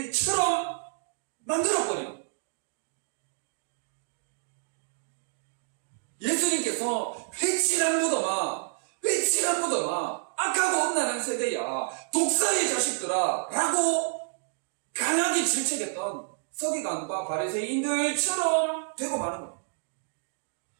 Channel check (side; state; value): left; silent; digital silence